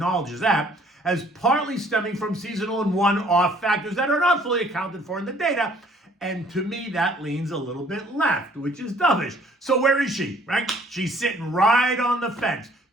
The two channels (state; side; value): normal; both; correlation 0.59